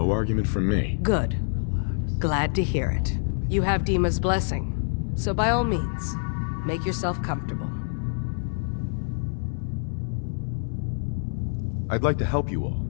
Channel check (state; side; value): silent; right; 61 dB below the other